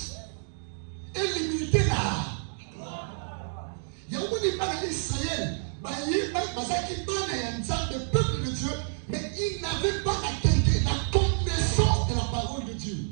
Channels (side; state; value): left; silent; digital silence